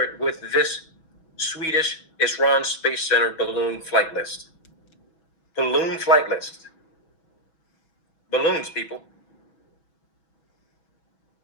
it with this Swedish Isran Space Center balloon flight list. Balloon flight list. Balloons, people.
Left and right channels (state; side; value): late; right; 6.2 ms